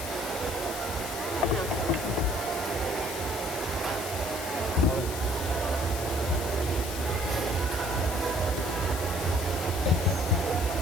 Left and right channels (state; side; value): noise; left; hiss, 8 dB below the sound